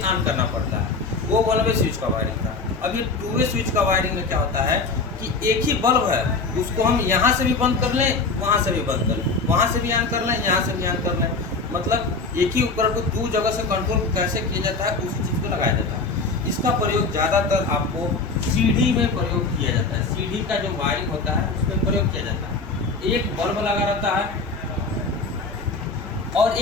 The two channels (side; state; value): right; quieter; 3.9 dB